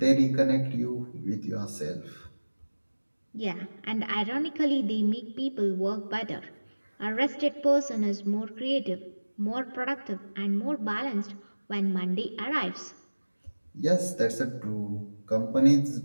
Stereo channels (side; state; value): both; inverted; correlation -1.00